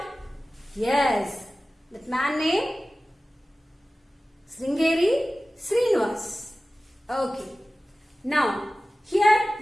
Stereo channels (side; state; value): both; normal; correlation 0.96